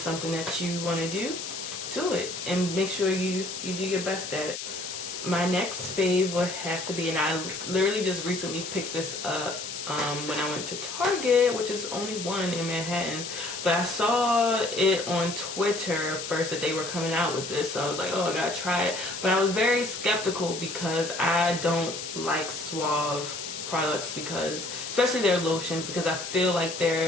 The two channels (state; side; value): noise; left; hiss, 7 dB below the sound